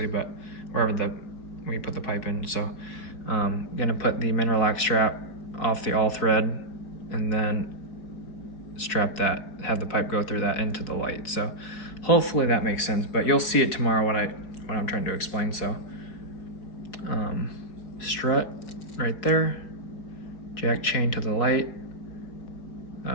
but wherever we put the pipe in. So gonna put the mineralac strap off the all thread and then strap that, have the pipe go through that into the light. So hopefully that makes sense, but you'll see it tomorrow what I'm trying to explain. So strut right there, jack chain to the light,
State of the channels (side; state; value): right; late; 4.6 ms